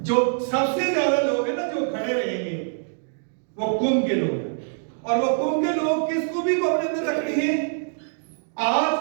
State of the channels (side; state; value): left; silent; digital silence